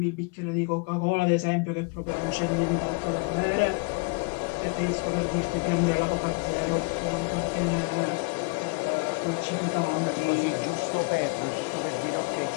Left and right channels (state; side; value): quieter; right; 31.6 dB